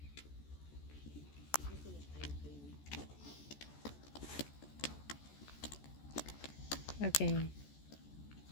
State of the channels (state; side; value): late; right; 14 ms